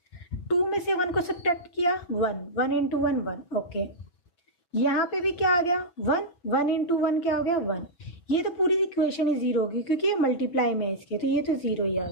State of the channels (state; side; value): late; right; 5.7 ms